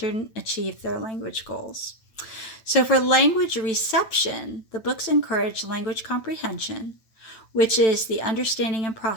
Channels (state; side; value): late; right; 9.0 ms